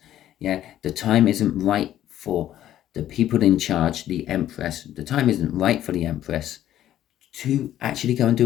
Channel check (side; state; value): right; quieter; 12.2 dB